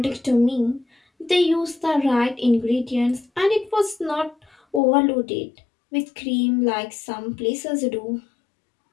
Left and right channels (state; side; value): drops out; right; at 4.8 s